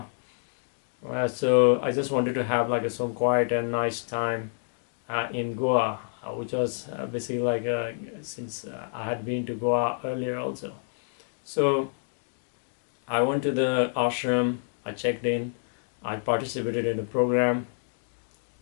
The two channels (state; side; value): silent; right; digital silence